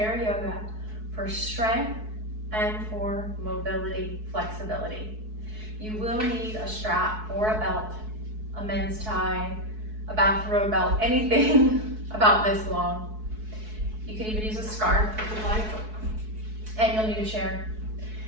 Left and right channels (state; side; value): late; left; 4.6 ms